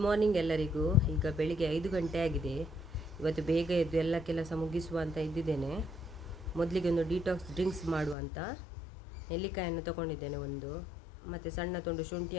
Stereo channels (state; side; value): drops out; right; at 8.2 s